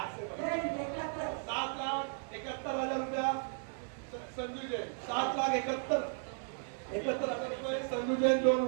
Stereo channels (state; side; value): silent; left; 54 dB below the other